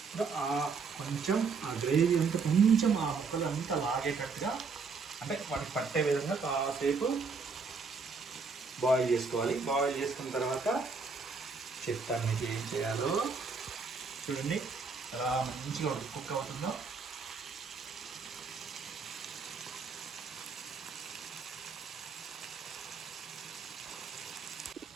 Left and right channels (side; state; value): left; quieter; 4.8 dB